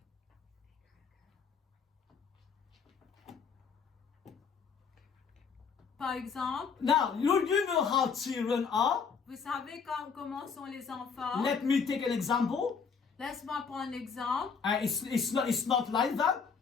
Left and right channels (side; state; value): right; quieter; 5.9 dB